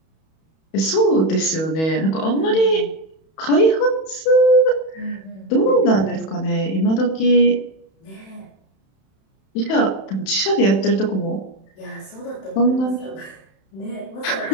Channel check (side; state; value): right; late; 31 ms